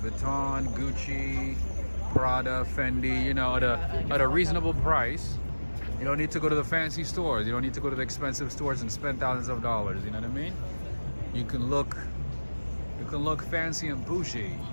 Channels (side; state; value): both; inverted; correlation -1.00